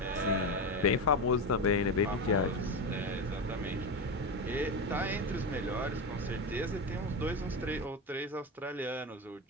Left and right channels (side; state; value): both; normal; correlation 0.17